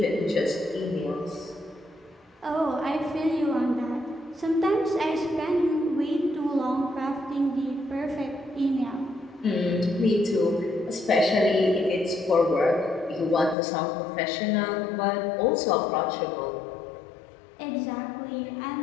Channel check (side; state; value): right; drops out; at 13.6 s